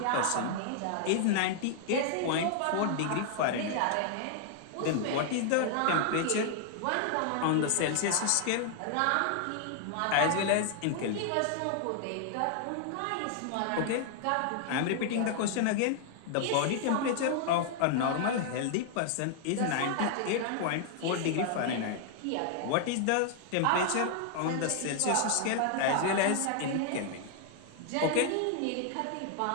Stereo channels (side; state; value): both; different; correlation 0.00